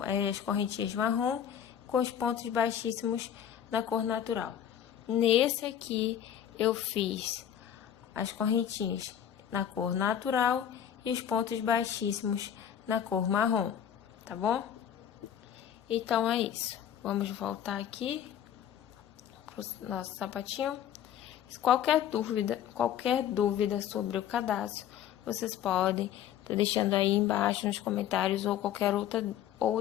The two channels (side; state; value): right; quieter; 9.9 dB